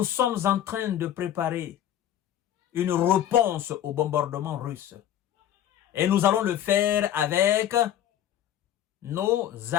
sommes en train de préparer une réponse au bombardement russe. Et nous allons le faire avec nos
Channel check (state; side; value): quieter; right; 11.1 dB